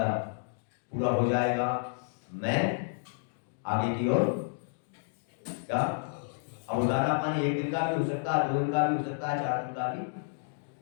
पूरा हो जाएगा, मैं आगे की ओर क्या, अब दाना पानी 1 दिन का भी हो सकता है, 2 दिन का भी हो सकता है, 4 दिन का भी,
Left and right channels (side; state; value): right; silent; digital silence